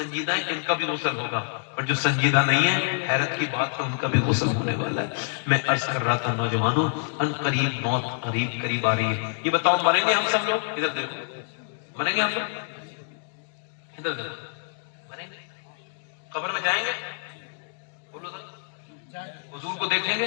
ہیں ان کا بھی غسل ہوگا، اور جو سنجیدہ نہیں ہے حیرت کی بات ہے ان کا بھی غسل ہونے والا ہے۔ میں عرض کر رہا تھا نوجوانوں، ان قریب موت قریب آ رہی ہے۔ یہ بتاؤ مریں گے ہم سب لوگ؟ ادھر دیکھو، مریں گے ہم لوگ؟ ادھر دیکھو، مریں گے؟ قبر میں جائیں گے؟ بولو ذرا، حضور کو دیکھیں گے؟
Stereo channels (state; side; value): silent; right; digital silence